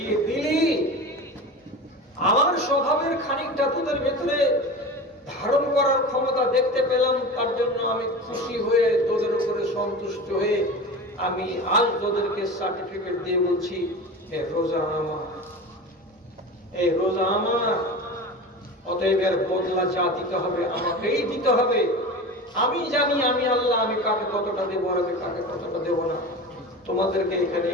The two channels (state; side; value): normal; both; correlation 0.30